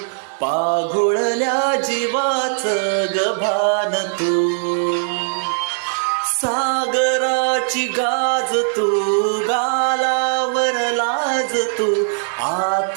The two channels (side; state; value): left; silent; digital silence